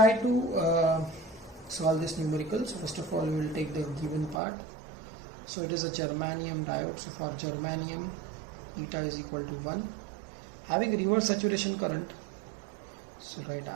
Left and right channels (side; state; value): left; drops out; at 4.4 s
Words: to solve this numerical. So first of all we will take the given part. So it is a germanium diode. So for germanium eta is equal to 1, having reverse saturation current. So write